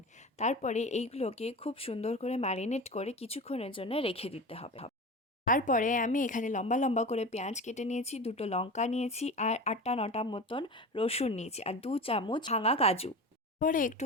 তারপরে এইগুলোকে খুব সুন্দর করে ম্যারিনেট করে কিছুক্ষণের জন্য রেখে দিতে হবে। তারপরে আমি এখানে লম্বা লম্বা করে পেঁয়াজ কেটে নিয়েছি, 2টো লঙ্কা নিয়েছি আর 8টা 9টা মতন রসুন নিয়েছি আর 2 চামচ ভাঙা কাজু। পরে একটু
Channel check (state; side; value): normal; both; correlation 0.30